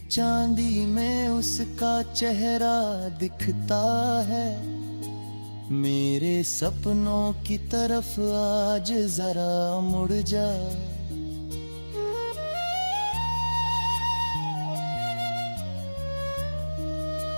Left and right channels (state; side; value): inverted; both; correlation -1.00